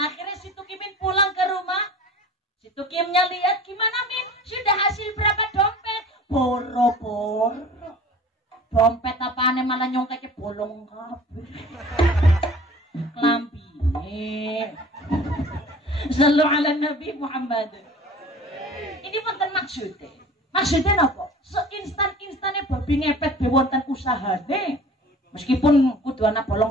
si Tukimin pulang ke rumah. Si Tukimnya lihat gimana Min, sudah hasil berapa dompet? Boro-boro. Dompet apaan malah nyongkeknya bolong kabeh. Lambine. Sallu ala Nabi Muhammad. Ini wonten maksudnya. Maksudnya apa? Seinstan-instannya babi ngepet be wonten usahane. Meskipun kudu ana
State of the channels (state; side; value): normal; both; correlation 0.43